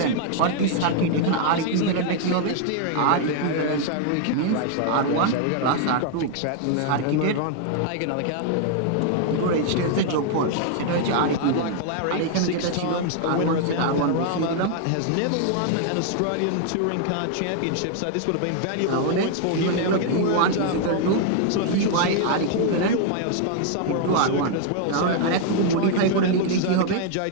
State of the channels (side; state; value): both; different; correlation 0.00